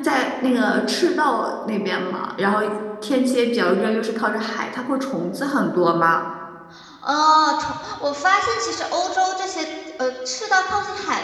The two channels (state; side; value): identical; both; correlation 1.00